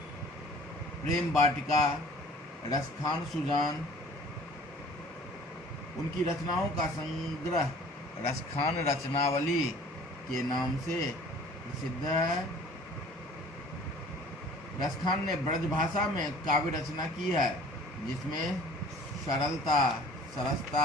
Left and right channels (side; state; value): both; normal; correlation 0.50